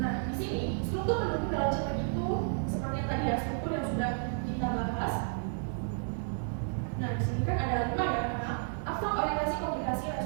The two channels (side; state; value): left; silent; digital silence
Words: di sini struktur pendukung dalam cerpen itu seperti yang tadi ya, struktur yang sudah kita bahas. Nah, di sini kan ada 5 ya, abstrak, orientasi, komunikasi,